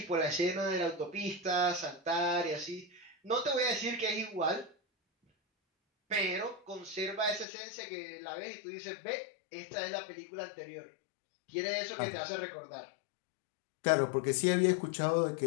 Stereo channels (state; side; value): drops out; right; at 7.5 s